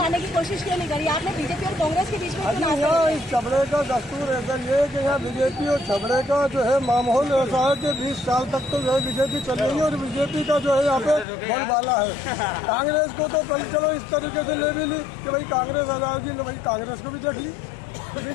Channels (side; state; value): right; drops out; at 11.2 s